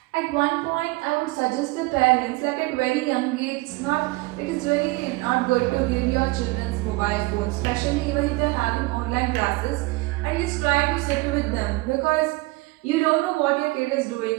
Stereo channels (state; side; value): quieter; left; 22.9 dB